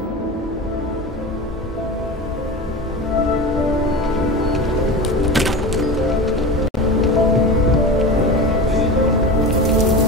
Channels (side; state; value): both; normal; correlation 0.28